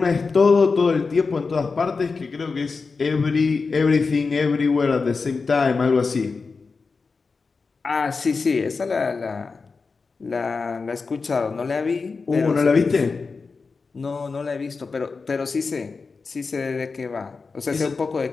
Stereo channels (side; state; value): right; quieter; 4.5 dB